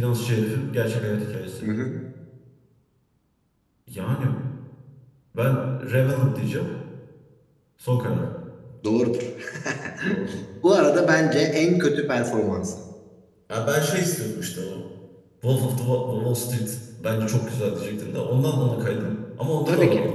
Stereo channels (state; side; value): identical; both; correlation 1.00